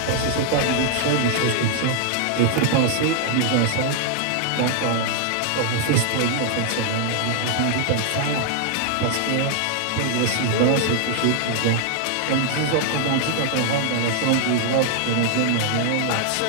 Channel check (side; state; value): both; different; correlation 0.00